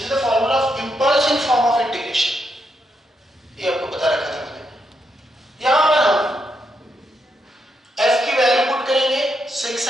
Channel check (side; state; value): both; normal; correlation 0.81